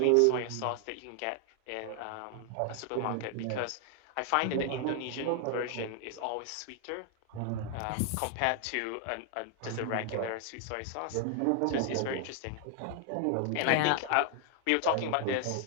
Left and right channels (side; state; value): both; different; correlation 0.00